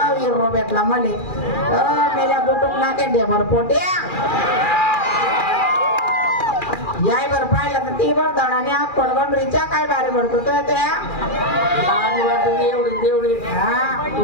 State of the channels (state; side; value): late; right; 2.4 ms